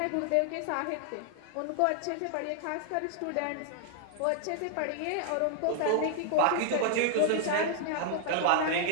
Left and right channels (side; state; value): both; different; correlation -0.01